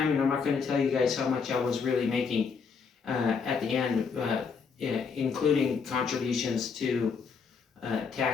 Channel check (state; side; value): quieter; right; 5.6 dB